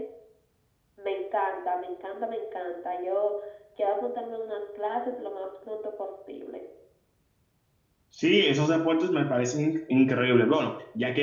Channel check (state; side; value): identical; both; correlation 1.00